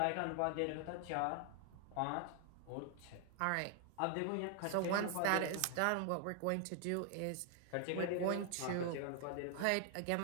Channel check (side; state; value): both; different; correlation 0.00